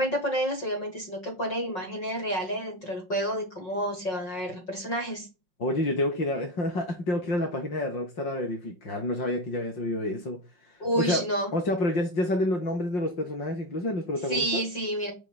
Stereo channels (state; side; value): late; right; 5.4 ms